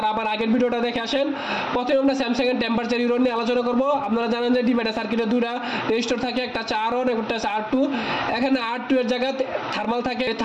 আবার আগের ভিডিওটা দেখে আসেন। প্রথমে আমরা স্যামসাং এর টেম্পারেচার ইরর নিয়ে আলোচনা করব। আপনারা জানেন যে ডিমেটা সার্কিটে দুইটা রেজিস্টর থাকে, একটা হচ্ছে R1 একটা হচ্ছে R2। এখানে R2 এর জায়গায় থার্মাল থাকে।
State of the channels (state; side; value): identical; both; correlation 1.00